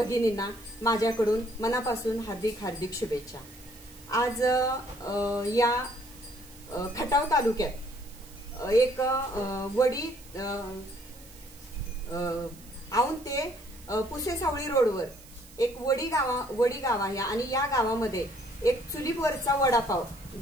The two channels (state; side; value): noise; right; hiss, 22 dB below the sound